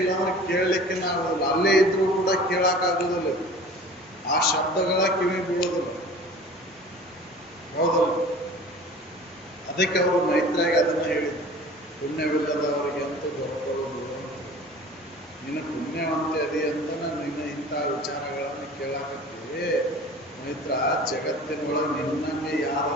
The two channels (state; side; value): normal; both; correlation 0.43